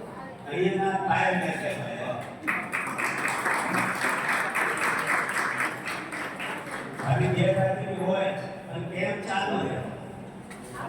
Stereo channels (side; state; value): both; identical; correlation 1.00